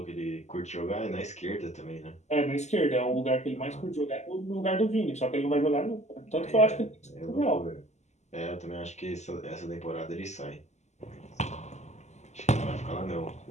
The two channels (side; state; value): right; late; 0.33 ms